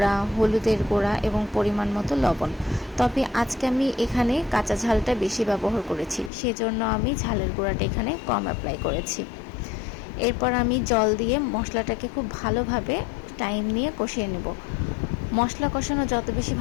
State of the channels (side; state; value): right; drops out; at 6.3 s